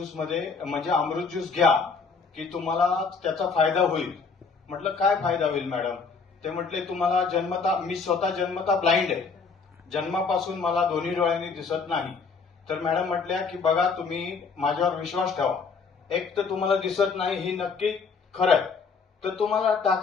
मध्ये म्हणजे अमृत ज्यूस घ्या की तुम्हाला त्याचा फायदा होईल. म्हटलं काय फायदा होईल मॅडम? ते म्हटले तुम्हाला जन्मता, मी स्वतः जन्मता ब्लाइंड आहे, जन्मापासून मला दोन्ही डोळ्यांनी दिसत नाही. तर मॅडम म्हटल्या की बघा तुम्ही माझ्यावर विश्वास ठेवा, एक तर तुम्हाला दिसत नाही ही नक्की खरं आहे, तर तुम्हाला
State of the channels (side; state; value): right; quieter; 5.0 dB